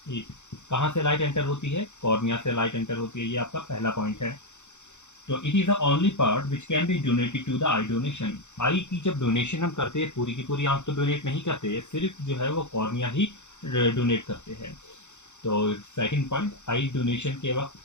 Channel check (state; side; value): late; right; 0.84 ms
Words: it. कहाँ से लाइट एंटर होती है, कॉर्निया से लाइट एंटर होती है, ये आपका पहला पॉइंट है। तो it is the only part which can be donated to the eye donation. Eye की जब डोनेशन हम करते हैं, पूरी की पूरी आंख तो डोनेट नहीं करते, सिर्फ जो है वो कॉर्निया ही डोनेट करते हैं। तो सेकंड पॉइंट, आई डोनेशन के वक्त